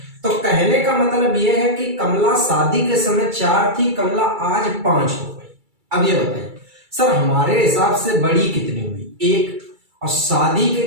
तो कहने का मतलब यह है कि कमला शादी के समय 4 थी, कमला आज 5 हो गई। अब ये बताइए सर, हमारे हिसाब से बड़ी कितनी हुई? 1। और शादी के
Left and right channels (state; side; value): late; left; 2.3 ms